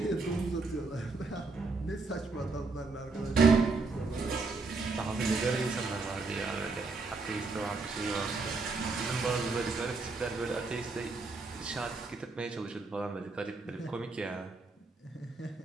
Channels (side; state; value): left; quieter; 3.9 dB